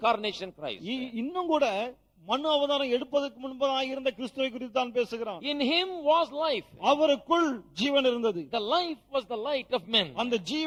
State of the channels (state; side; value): identical; both; correlation 1.00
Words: Christ. இன்னும் கூட மனு அவதாரம் எடுப்பதற்கு முன்பதாக இருந்த கிறிஸ்துவை குறித்து தான் பேசுகிறான். In him was life. அவருக்குள் ஜீவன் இருந்தது. The life was the light of men. அந்த